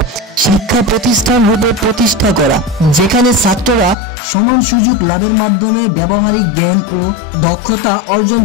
শিক্ষা প্রতিষ্ঠান রূপে প্রতিষ্ঠা করা, যেখানে ছাত্ররা সমান সুযোগ লাভের মাধ্যমে ব্যবহারিক জ্ঞান ও দক্ষতা অর্জন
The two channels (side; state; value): right; drops out; at 4.0 s